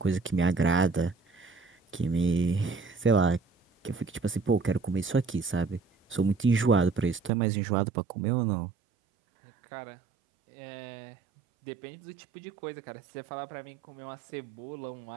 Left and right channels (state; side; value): drops out; left; at 7.3 s